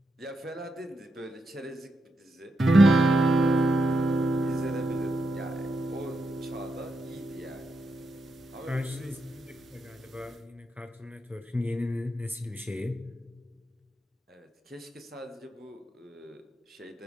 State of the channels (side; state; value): both; normal; correlation 0.84